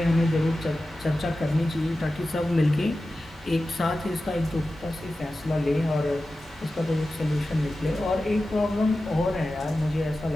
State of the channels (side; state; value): both; normal; correlation 0.94